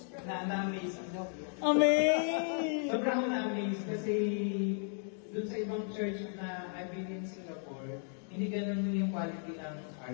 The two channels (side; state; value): right; silent; 54 dB below the other